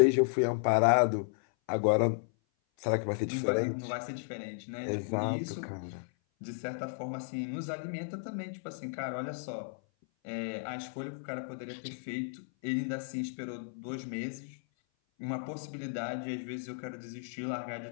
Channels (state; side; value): silent; right; 55 dB below the other